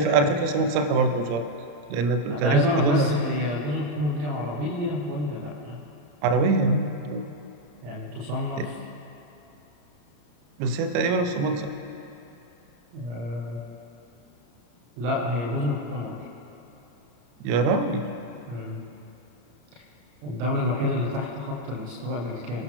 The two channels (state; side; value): late; left; 34 ms